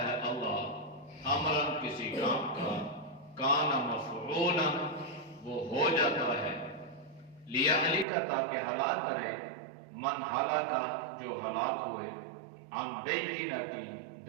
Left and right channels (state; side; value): drops out; left; at 8.1 s